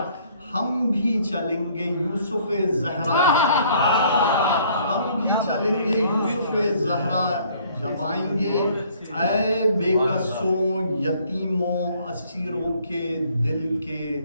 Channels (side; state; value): both; inverted; correlation -0.60